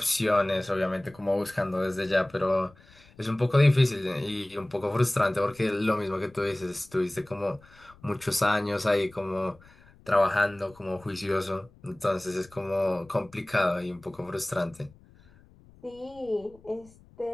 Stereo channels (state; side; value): noise; left; rumble, 26 dB below the sound